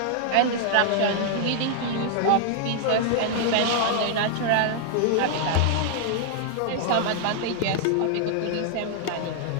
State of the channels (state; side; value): different; both; correlation 0.00